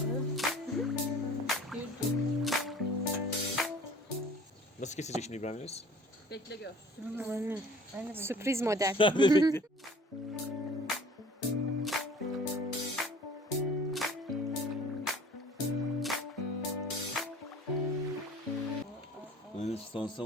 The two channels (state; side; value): normal; both; correlation 0.48